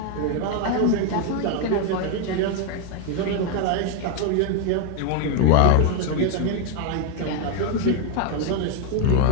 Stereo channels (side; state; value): both; different; correlation 0.01